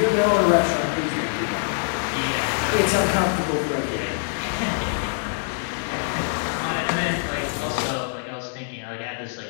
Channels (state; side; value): silent; right; 62 dB below the other